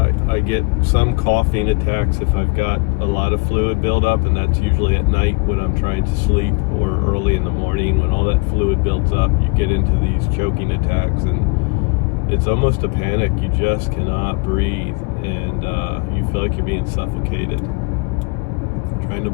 I get some coughing attacks if I've got a lot of fluid buildup, and that's usually at night when I'm trying to sleep, or early in the morning when all that fluid builds up. You get into these choking attacks, and it's almost a panic. You just cannot breathe, and you feel like you're being suffocated, trying to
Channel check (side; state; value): right; quieter; 29.3 dB